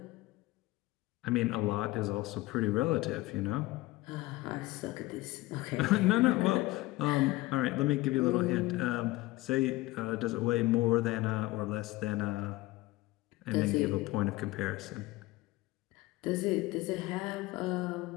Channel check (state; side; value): quieter; right; 19.3 dB